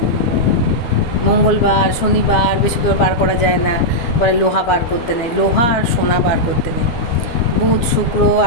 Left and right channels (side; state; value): right; late; 12 ms